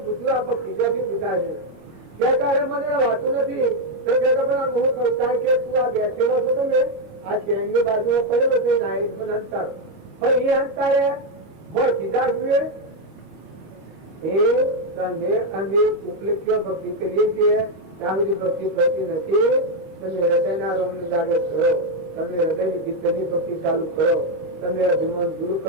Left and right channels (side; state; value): left; late; 25 ms